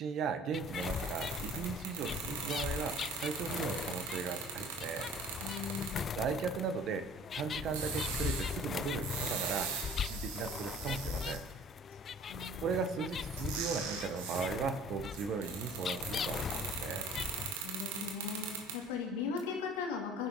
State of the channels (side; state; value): both; normal; correlation 0.48